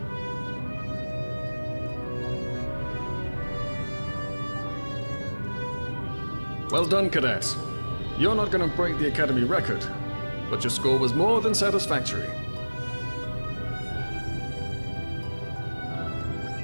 Well done, cadets. You're not going to break the Academy record, but your score was more than satisfactory.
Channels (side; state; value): both; inverted; correlation -1.00